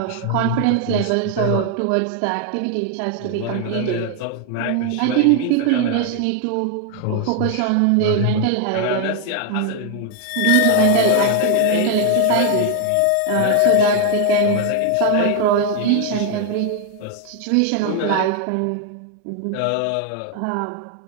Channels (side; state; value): both; different; correlation 0.00